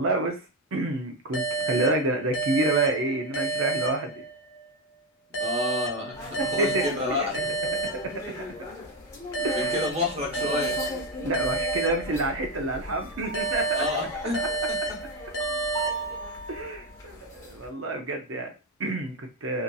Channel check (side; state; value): both; normal; correlation 0.10